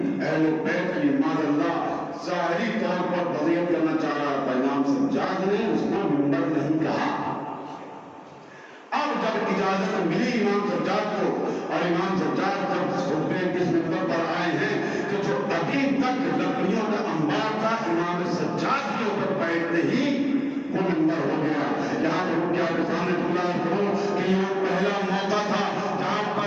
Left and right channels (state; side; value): identical; both; correlation 1.00